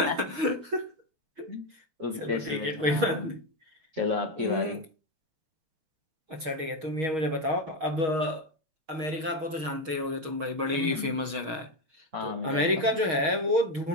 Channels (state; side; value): late; left; 6.4 ms